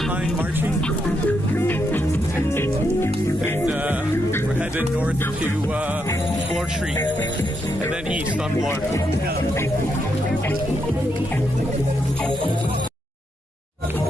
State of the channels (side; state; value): both; normal; correlation 0.80